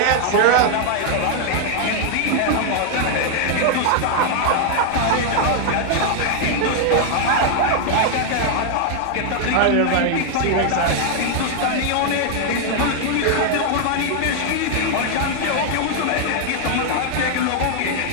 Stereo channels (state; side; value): different; both; correlation 0.00